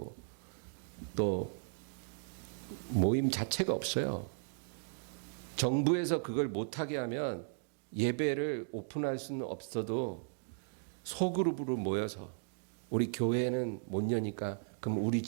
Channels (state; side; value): silent; left; digital silence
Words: 또 모임 자체가 없어요. 정부에서 그걸 못하게 하면 예배를 오픈할 수는 없어도 소그룹으로 모여서 우리 교회는 못 여니까 그럼 우리